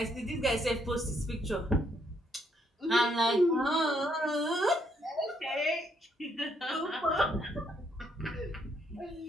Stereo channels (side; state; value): both; normal; correlation 0.72